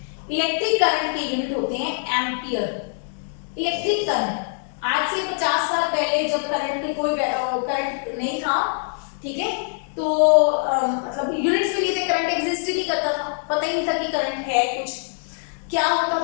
इलेक्ट्रिक करंट के यूनिट होते हैं एम्पियर। इलेक्ट्रिक करंट, आज से 50 साल पहले जब करंट कोई करंट नहीं था, ठीक है, तो मतलब यूनिट्स के लिए करंट एग्जिस्ट ही नहीं करता था, पता ही नहीं था कि करंट है कुछ। क्या होता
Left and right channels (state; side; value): silent; right; digital silence